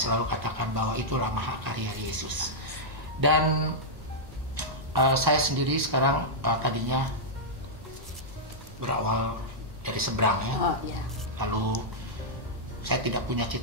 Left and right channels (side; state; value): both; normal; correlation -0.08